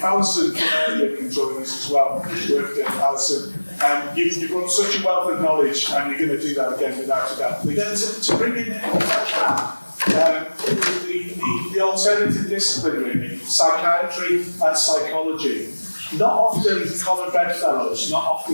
Alison can join us as well, work with Alison. You've got such a wealth of knowledge, and you're going to do that again without a doubt. Then to bring in the alternative discipline, really, psychiatry and psychology. Not often common bedfellows, not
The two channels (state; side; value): inverted; both; correlation -1.00